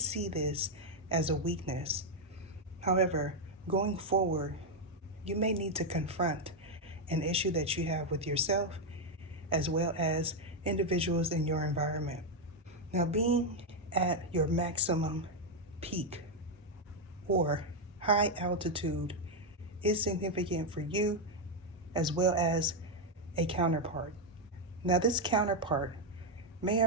this as a weakness. However, going forward, you may need to confront an issue that you have with yourself as well as individuals in your environment. Now, being at your maximum peak or high altitude is significant for you as well as a counterpart. Now, this counterpart may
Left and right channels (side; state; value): both; normal; correlation 0.02